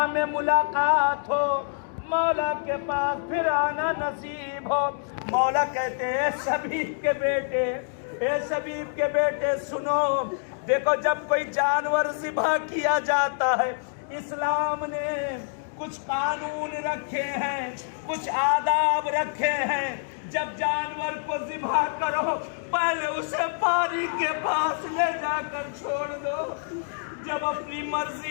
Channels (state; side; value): silent; right; digital silence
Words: میں ملاقات ہو مولا کے پاس پھر آنا نصیب ہو. مولا کہتے ہیں اے شبیب کے بیٹے اے شبیب کے بیٹے سنو. دیکھو جب کوئی جانور ذبح کیا جاتا ہے اسلام نے کچھ قانون رکھے ہیں کچھ آداب رکھے ہیں. جب جانور کو ذبح کرو پہلے اسے پانی کے پاس لے جا کر چھوڑ دو. جب اپنی